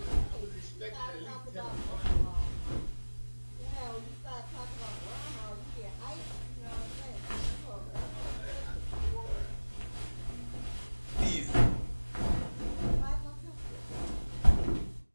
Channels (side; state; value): both; inverted; correlation -1.00